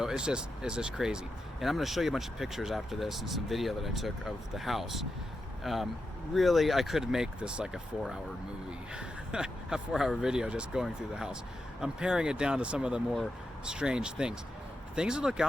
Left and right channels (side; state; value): both; normal; correlation 0.88